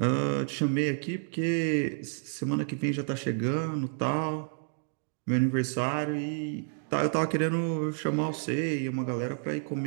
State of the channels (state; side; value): silent; left; digital silence